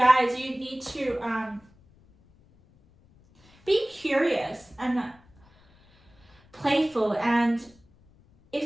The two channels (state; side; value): noise; left; rumble, 30 dB below the sound